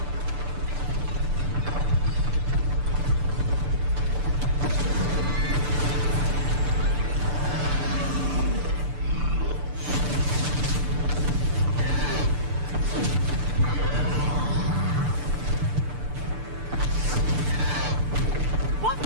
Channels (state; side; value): late; left; 6.8 ms